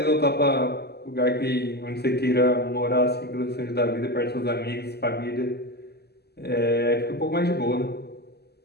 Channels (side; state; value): right; late; 0.47 ms